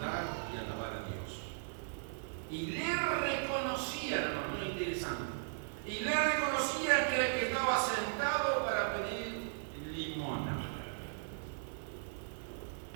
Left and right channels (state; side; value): silent; left; 53 dB below the other